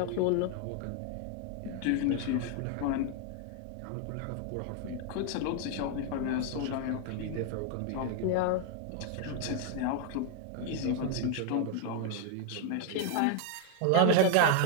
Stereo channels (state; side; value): different; both; correlation 0.00